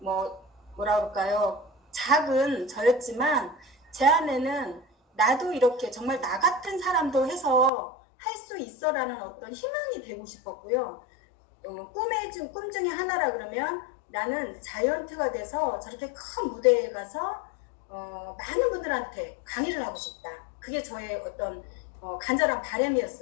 그럴까요? 작은 저였지만 제 안에는 나도 이렇게 정말 나 같은 사람도 해서 할 수 있어라는 어떤 희망이 되고 싶었고요. 꿈 중에 하나라 그러면 나는 자이언트가 돼서 저렇게 큰 무대에 가서 많은 분들한테 강의를 하고 싶다. 그게 저의 어떤 간절한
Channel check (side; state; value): right; drops out; at 7.7 s